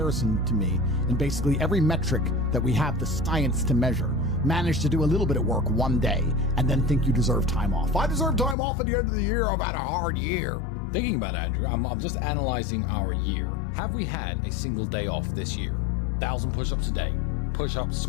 to me in basically every metric that we have the science to measure, manage to do a little bit of work one day and then think you deserve time off. I deserve time off at the end of the year. I've had a hard year. Thinking about it, Andrew, I'm just analyzing our year. Have we had a single day off this year? 1,000 push-ups a day, push-ups,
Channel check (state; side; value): drops out; right; at 8.6 s